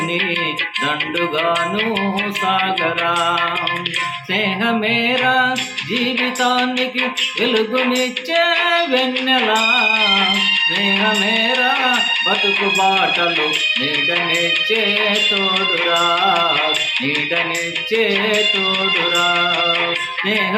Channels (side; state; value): both; identical; correlation 1.00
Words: దండుగాను సాగరా. స్నేహమేరా జీవితానికి వెలుగునిచ్చే వెన్నెలా, స్నేహమేరా బతుకు బాటలు నీడనిచ్చే తోడురా, నీడనిచ్చే తోడురా.